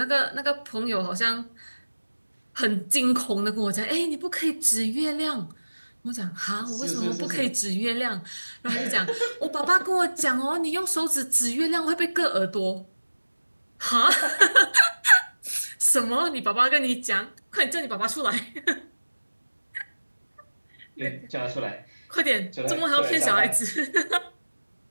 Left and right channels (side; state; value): both; inverted; correlation -1.00